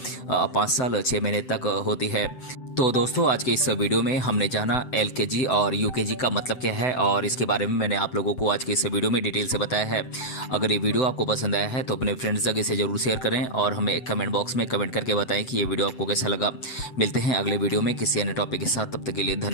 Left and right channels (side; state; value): right; late; 7.9 ms